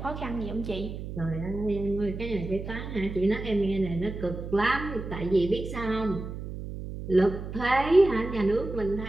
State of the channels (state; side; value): noise; right; hum, 8 dB below the sound